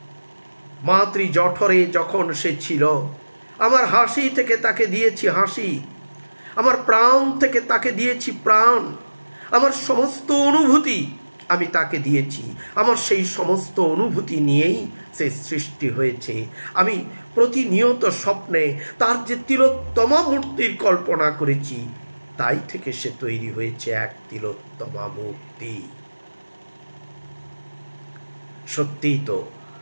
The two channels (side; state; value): both; inverted; correlation -1.00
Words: মাতৃ জঠরে যখন সে ছিল, আমার হাসি থেকে তাকে দিয়েছি হাসি, আমার প্রাণ থেকে তাকে দিয়েছি প্রাণ, আমার সমস্ত অনুভূতি আমি তাকে দিয়েছি। আমার সেই সমস্ত অনুভূতি নিয়েই সে সৃষ্টি হয়েছে। আমি প্রতিনিয়ত স্বপ্নে তার যে তিলোত্তমা মূর্তির কল্পনা করেছি, তাই থেকে সে তৈরি হয়েছে এক তিলোত্তমা মূর্তি। সত্যিই তো